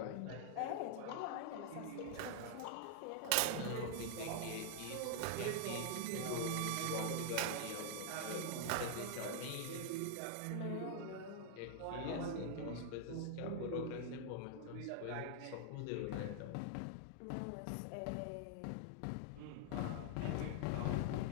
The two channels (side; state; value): both; different; correlation 0.00